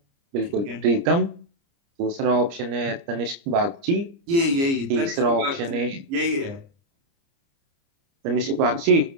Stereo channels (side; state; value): left; late; 29 ms